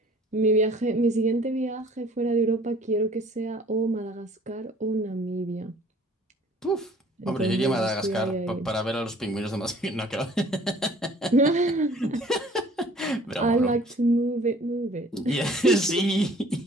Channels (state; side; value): normal; both; correlation 0.53